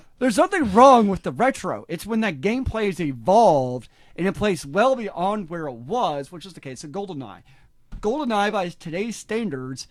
There's nothing wrong with the retro. It's when that gameplay has evolved and it plays well beyond where it was, which is the case of GoldenEye. GoldenEye, by today's standards,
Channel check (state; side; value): identical; both; correlation 1.00